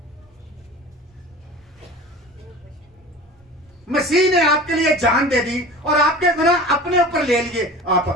مسیح نے آپ کے لیے جان دے دی اور آپ کے گناہ اپنے اوپر لے لیے. آپ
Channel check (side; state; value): both; normal; correlation 0.38